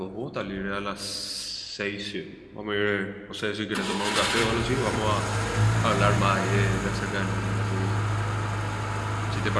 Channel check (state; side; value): identical; both; correlation 1.00